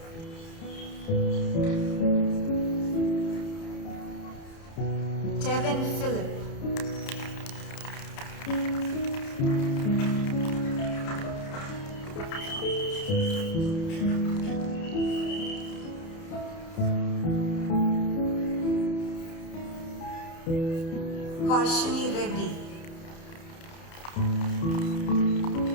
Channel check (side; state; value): right; late; 30 ms